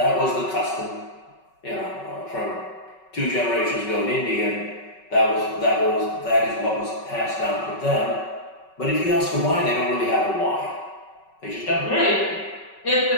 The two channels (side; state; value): right; late; 5.3 ms